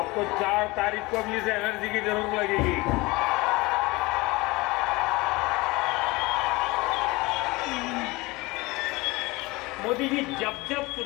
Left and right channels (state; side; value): quieter; right; 22.8 dB